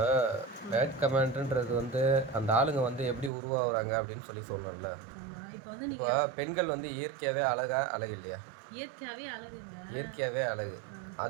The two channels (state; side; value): drops out; left; at 3.3 s